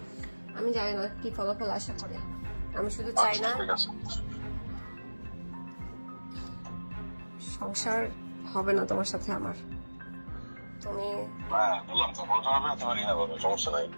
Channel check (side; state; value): both; inverted; correlation -1.00